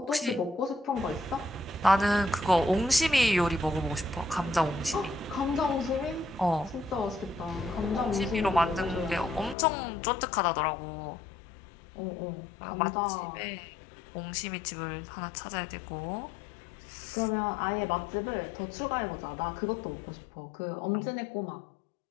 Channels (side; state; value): right; drops out; at 9.6 s